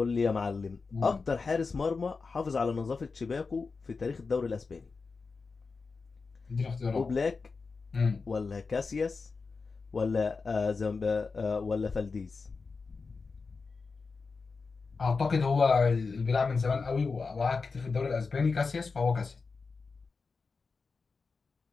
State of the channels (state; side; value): quieter; right; 4.5 dB